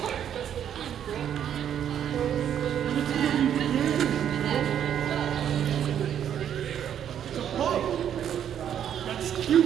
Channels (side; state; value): left; quieter; 9.5 dB